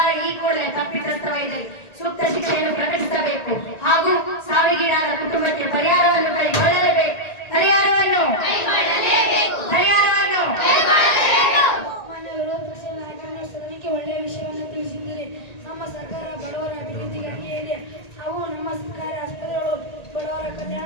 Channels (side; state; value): right; late; 1.9 ms